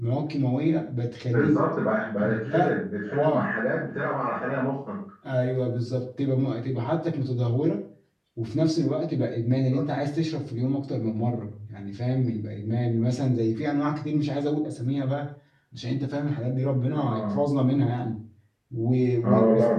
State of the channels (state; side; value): identical; both; correlation 1.00